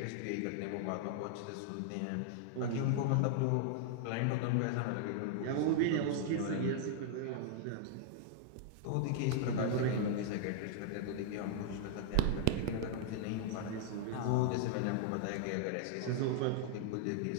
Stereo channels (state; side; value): different; both; correlation -0.01